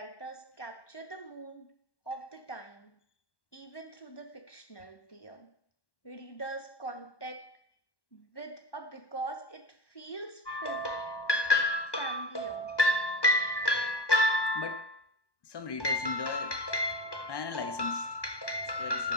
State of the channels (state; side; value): late; right; 1.1 ms